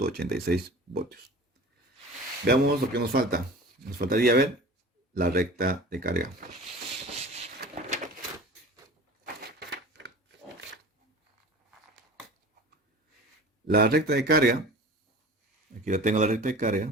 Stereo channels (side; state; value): both; normal; correlation 0.39